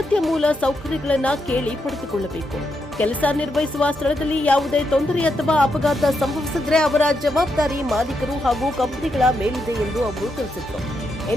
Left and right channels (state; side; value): normal; both; correlation 0.82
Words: ಮೂಲ ಸೌಕರ್ಯಗಳನ್ನು ಕೇಳಿ ಪಡೆದುಕೊಳ್ಳಬೇಕು. ಕೆಲಸ ನಿರ್ವಹಿಸುವ ಸ್ಥಳದಲ್ಲಿ ಯಾವುದೇ ತೊಂದರೆ ಅಥವಾ ಅಪಘಾತ ಸಂಭವಿಸಿದರೆ ಅವರ ಜವಾಬ್ದಾರಿ ಮಾಲೀಕರು ಹಾಗೂ ಕಂಪನಿಗಳ ಮೇಲಿದೆ ಎಂದು ಅವರು ತಿಳಿಸಿದರು.